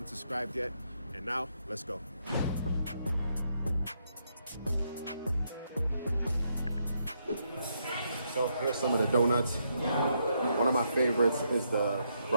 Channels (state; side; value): inverted; both; correlation -0.77